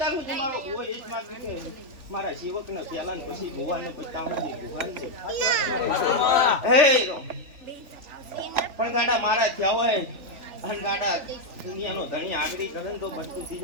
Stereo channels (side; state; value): left; late; 3.5 ms